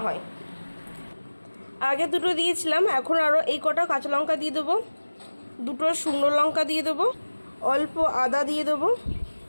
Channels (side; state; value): both; inverted; correlation -1.00